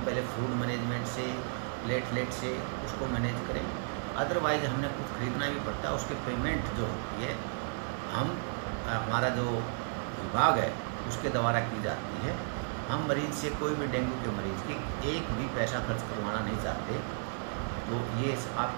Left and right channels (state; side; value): silent; left; digital silence